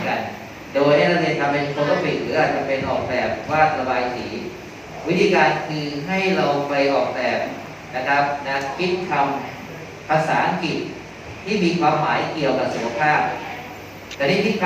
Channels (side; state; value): both; identical; correlation 1.00